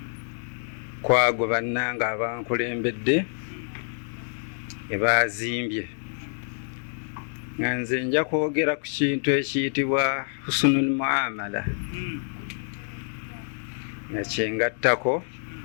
kwago bannange abankulembedde ebazimbye nga nze nja kwogera ku kintu ekiyitibwa husnul muamala nga kyengattako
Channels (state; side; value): silent; right; digital silence